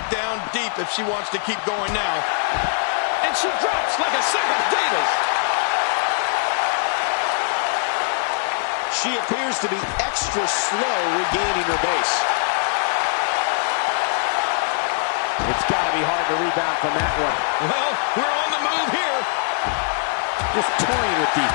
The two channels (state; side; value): silent; right; digital silence